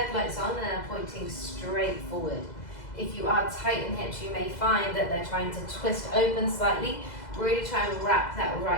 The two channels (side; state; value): right; late; 2.0 ms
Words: on and are pointing straight forward. If you are tight in hips, you may find that they're trying to twist open slightly. Really try and wrap that